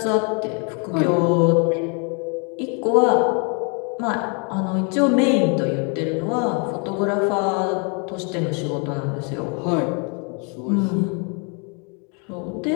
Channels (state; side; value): quieter; right; 36.1 dB